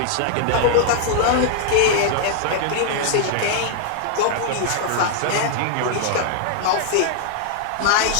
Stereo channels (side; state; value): both; different; correlation -0.01